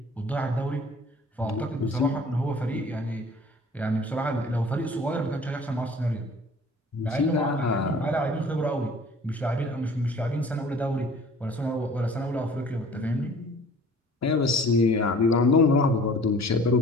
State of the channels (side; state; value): both; normal; correlation 0.48